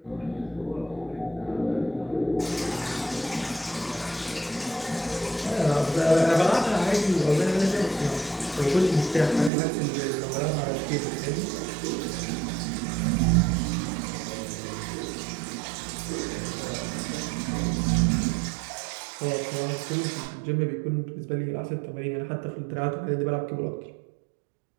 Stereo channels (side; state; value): left; drops out; at 9.5 s